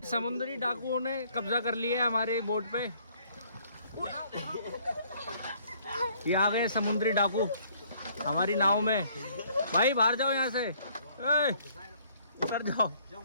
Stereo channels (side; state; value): both; inverted; correlation -0.62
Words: समुद्री डाकुओं ने कब्जा कर लिया है हमारे बोट पे, ये आ गए समुद्री डाकू हमारी नाव में। भाई बाहर जाओ यहाँ से, उतर जाओ।